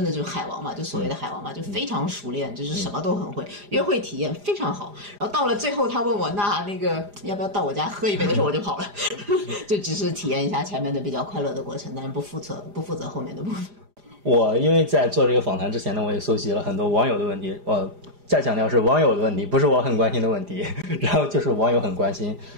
的就是海王嘛，就所谓的海王嘛，就非常熟练，就是什么都很会，约会体验非常好。然后到了最后，他问我那个要不要到我家喝一杯的时候，我就跑了，就只是体验一下前面的比较快乐的过程，但是不负责后面的部分。我因为在做这个访谈之前呢，我也搜集了很多网友的问题，我再强调是网友的问题，不是我很关心的问题。然后就是网友很关心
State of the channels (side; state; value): left; late; 4.9 ms